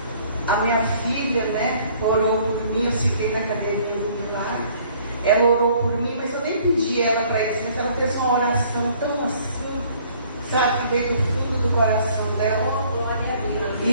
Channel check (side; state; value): both; inverted; correlation -0.58